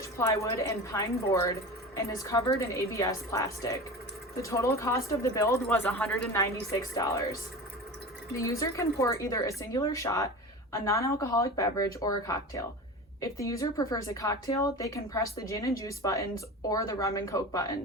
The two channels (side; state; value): both; normal; correlation 0.31